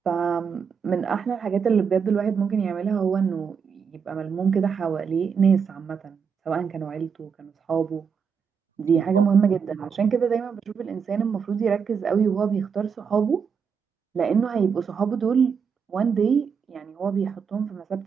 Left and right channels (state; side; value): quieter; left; 6.4 dB